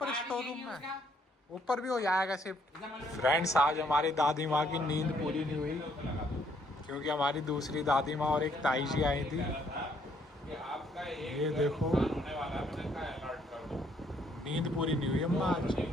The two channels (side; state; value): both; normal; correlation 0.68